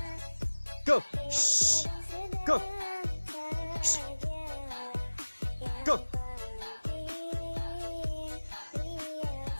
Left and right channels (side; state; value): both; inverted; correlation -1.00